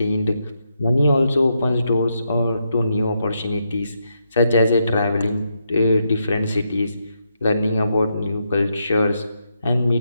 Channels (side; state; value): both; inverted; correlation -0.81